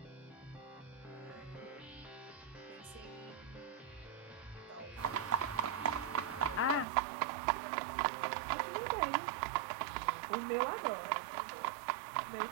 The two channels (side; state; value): left; drops out; at 6.9 s